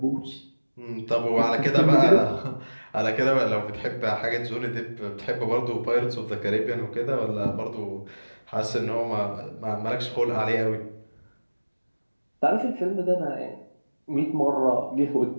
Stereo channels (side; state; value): both; inverted; correlation -1.00